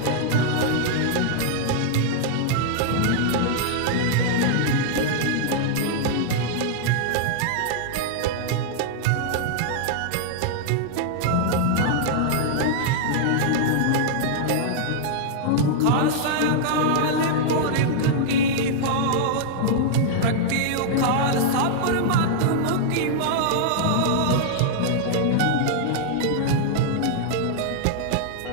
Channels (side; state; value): both; different; correlation -0.01